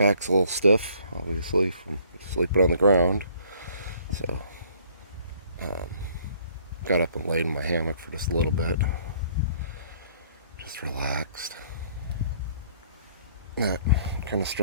a little stiff, obviously, from sleeping on the ground. So, got up and laid in my hammock for just a little bit. Just relaxed. That kind of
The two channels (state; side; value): inverted; both; correlation -0.60